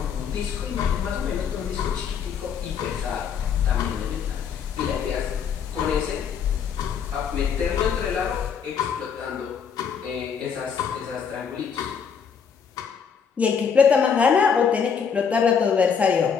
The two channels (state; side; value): quieter; right; 6.8 dB